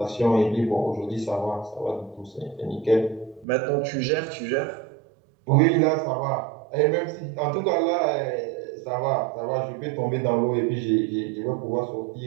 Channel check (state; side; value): drops out; left; at 3.5 s